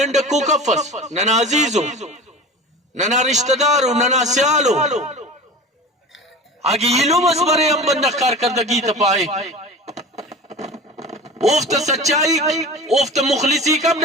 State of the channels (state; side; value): normal; both; correlation 0.34